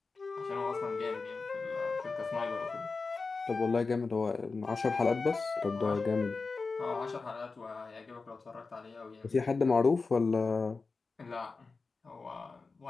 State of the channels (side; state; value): right; quieter; 4.2 dB